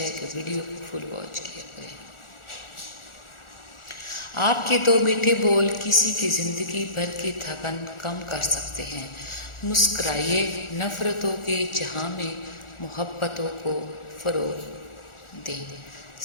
کہ ویڈیو کو فل واچ کیا کریں۔ آپ کے دو میٹھے بول کسی کی زندگی بھر کی تھکن کم کر سکتے ہیں۔ مسکرائیے، نفرتوں کے جہاں میں محبتوں کو فروغ دیں۔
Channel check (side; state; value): right; late; 1.4 ms